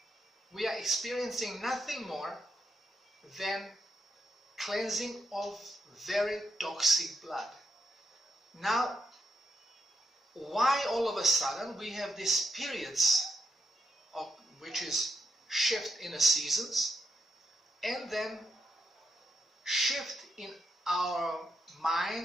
we are experiencing nothing more than cleansing of very toxic blood. Now, why all of a sudden we have these periods of which is shift in the seasons, and then shift in our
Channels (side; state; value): both; normal; correlation 0.81